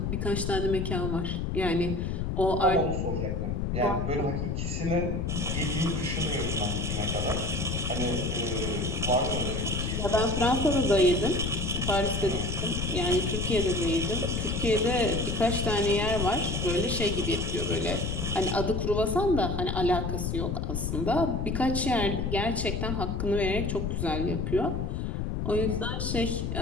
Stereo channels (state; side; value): noise; left; rumble, 1 dB below the sound